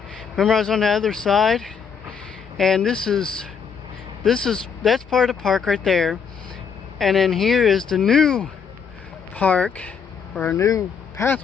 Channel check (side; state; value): right; quieter; 6.5 dB